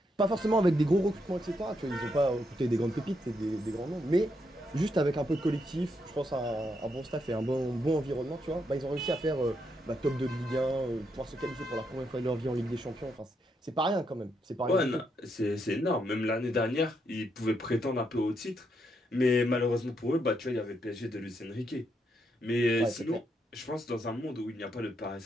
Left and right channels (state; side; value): normal; both; correlation 0.79